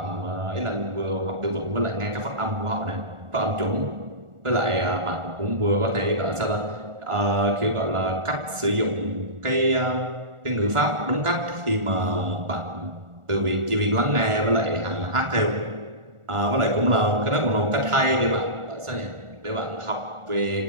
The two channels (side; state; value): left; late; 1.4 ms